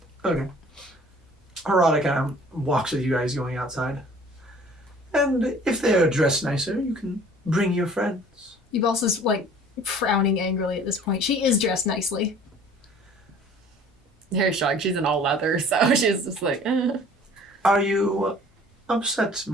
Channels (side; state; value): both; normal; correlation 0.51